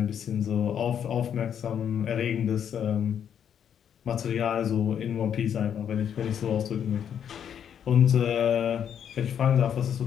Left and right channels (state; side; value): quieter; right; 8.7 dB